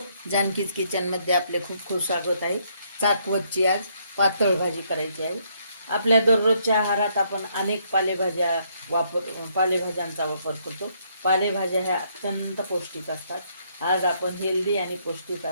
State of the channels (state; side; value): inverted; both; correlation -0.71